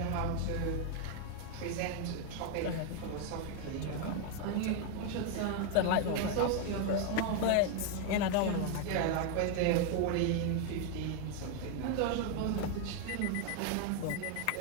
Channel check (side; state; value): both; different; correlation 0.01